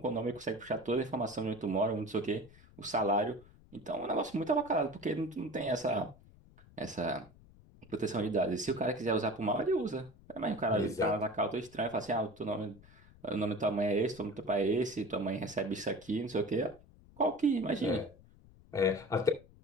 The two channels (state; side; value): noise; left; rumble, 24 dB below the sound